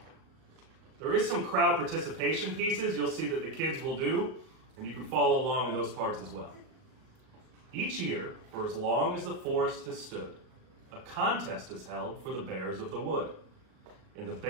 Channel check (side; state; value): left; late; 38 ms